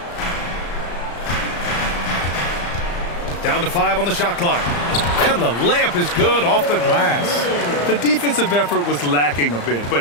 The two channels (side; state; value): right; late; 35 ms